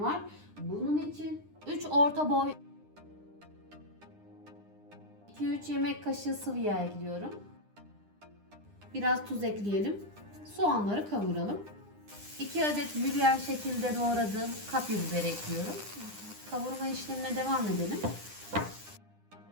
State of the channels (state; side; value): late; left; 9.9 ms